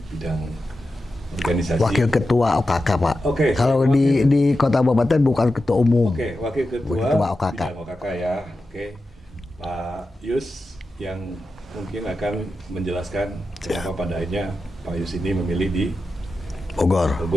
bidang organisasi. Wakil Ketua OKK, Pak. Oke. Kalau di Kota Kabupaten bukan Ketua Umum. Oke, Wakil Ketua OKK. bidang OKK ya. Oke, Pak Yus yang mungkin akan menjelaskan kenapa pada akhirnya Pak Yus ini memilih di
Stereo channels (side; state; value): both; normal; correlation 0.91